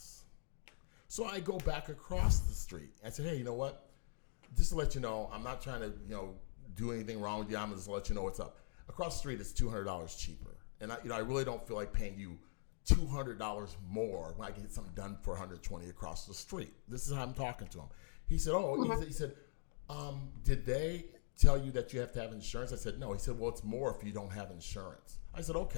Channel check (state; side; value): silent; right; digital silence